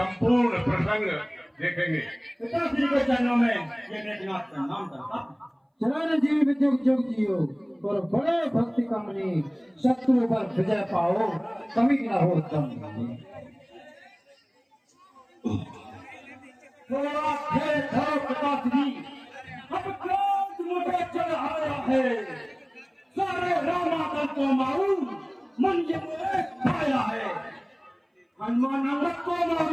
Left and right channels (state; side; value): identical; both; correlation 1.00